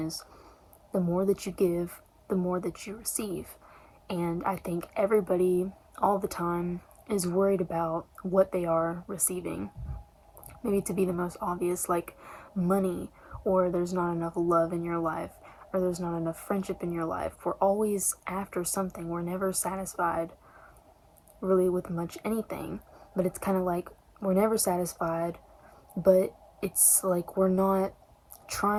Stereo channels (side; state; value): both; identical; correlation 1.00